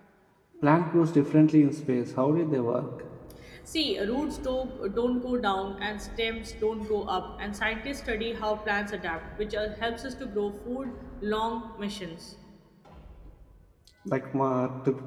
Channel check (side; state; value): both; identical; correlation 1.00